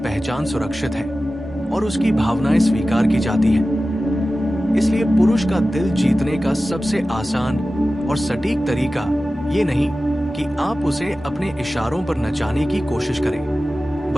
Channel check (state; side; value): normal; both; correlation 0.95